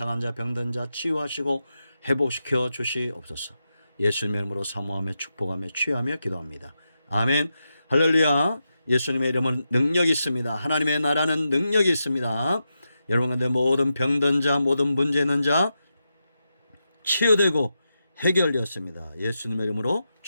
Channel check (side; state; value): both; inverted; correlation -0.88